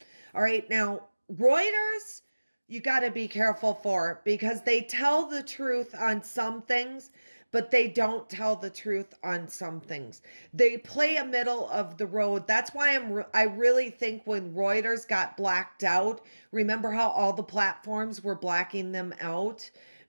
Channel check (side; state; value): both; inverted; correlation -1.00